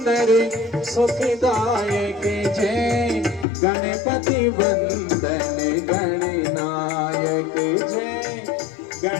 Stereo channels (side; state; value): right; drops out; at 3.5 s